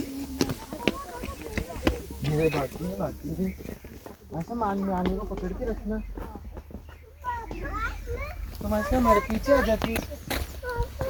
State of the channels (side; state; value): both; identical; correlation 1.00